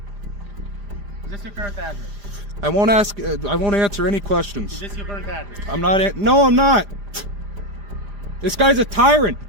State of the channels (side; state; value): left; late; 5.0 ms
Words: Is this your current address? I won't answer any questions. Is this your current address? I'm not. No, I'm not. This guy's a tyrant.